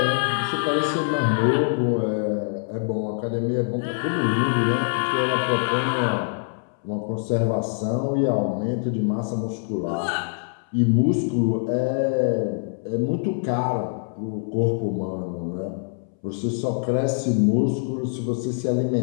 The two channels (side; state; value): right; silent; 62 dB below the other